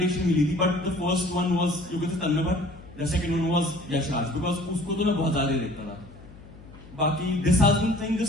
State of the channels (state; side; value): noise; left; hum, 20 dB below the sound